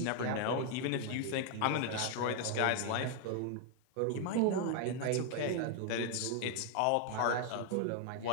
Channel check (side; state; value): both; different; correlation 0.00